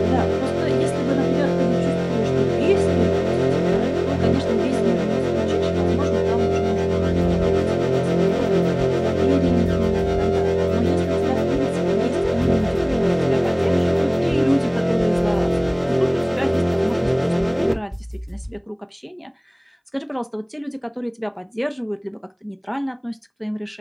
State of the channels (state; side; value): identical; both; correlation 1.00